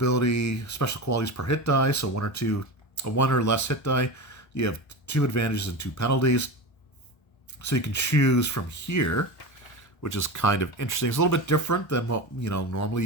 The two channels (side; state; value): right; late; 1.3 ms